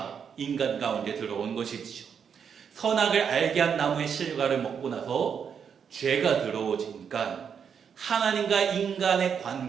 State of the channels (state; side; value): quieter; left; 7.2 dB